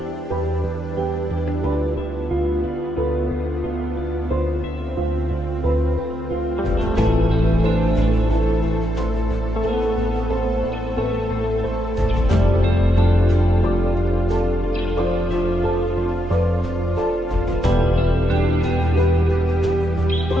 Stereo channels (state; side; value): normal; both; correlation 0.80